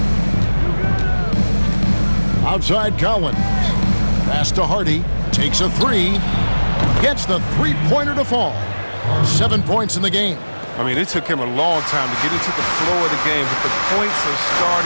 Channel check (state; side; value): inverted; both; correlation -1.00